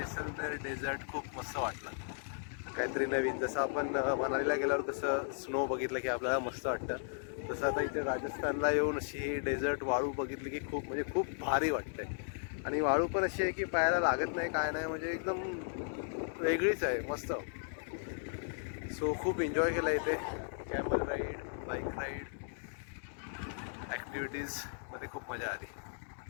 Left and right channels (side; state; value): right; silent; digital silence